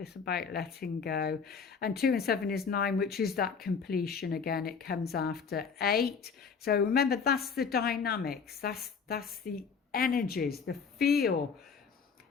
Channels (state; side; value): quieter; right; 5.9 dB